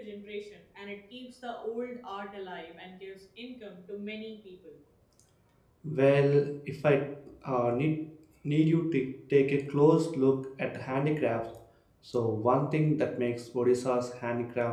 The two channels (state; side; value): identical; both; correlation 1.00